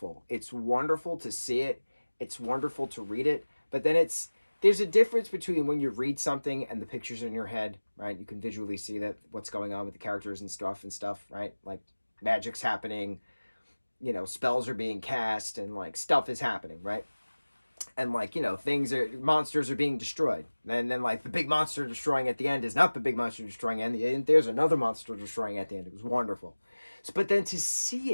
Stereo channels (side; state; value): both; inverted; correlation -1.00